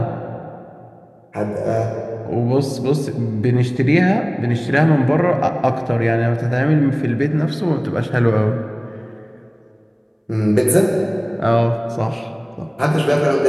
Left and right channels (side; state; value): both; identical; correlation 1.00